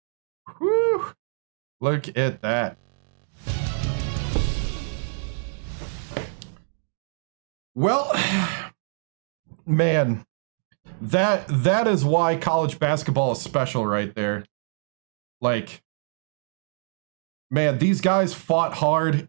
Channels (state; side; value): silent; left; digital silence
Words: Whew. Look at that. Well, man, that is why college basketball is special right there. Like, man, these guys fought hard.